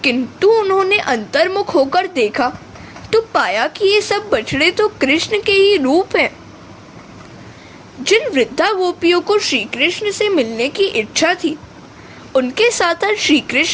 किंतु उन्होंने अंतर्मुख होकर देखा तो पाया कि ये सब बछड़े तो कृष्ण के ही रूप हैं। जिन वृद्धा गोपियों को श्री कृष्ण से मिलने की इच्छा थी, उनके साथ आज श्री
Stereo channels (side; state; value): both; identical; correlation 1.00